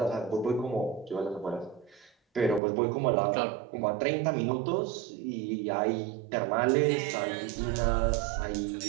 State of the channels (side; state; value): left; drops out; at 2.6 s